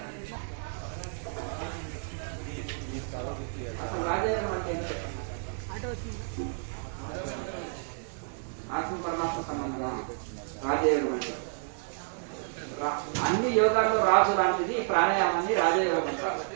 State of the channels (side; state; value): left; silent; digital silence